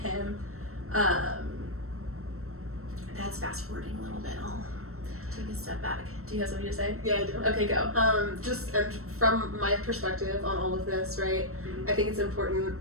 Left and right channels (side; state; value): left; late; 0.63 ms